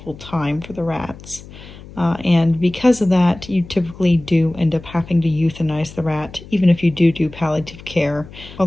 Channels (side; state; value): left; noise; hum, 18 dB below the sound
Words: time for the rats. And because of that, you typically do end up having to euthanize the rat, even if you do palliative care.